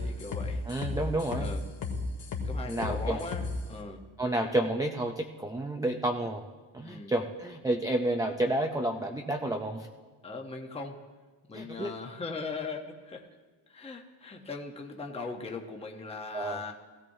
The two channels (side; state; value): both; normal; correlation 0.63